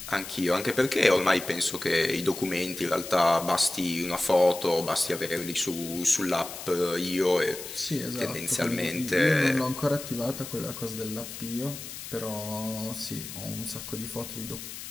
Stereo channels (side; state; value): left; noise; hiss, 10 dB below the sound